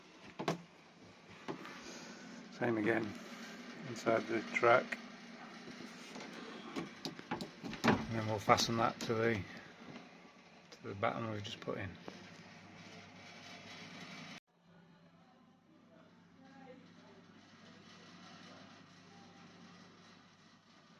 same again, inside the track, and then we'll fasten that to the batten we've just put in.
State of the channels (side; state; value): both; identical; correlation 1.00